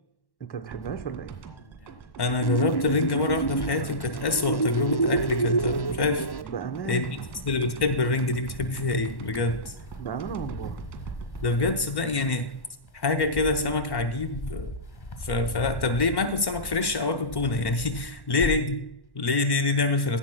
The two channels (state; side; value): late; right; 1.1 ms